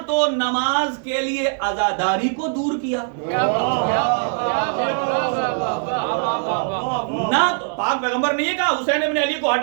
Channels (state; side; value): silent; left; digital silence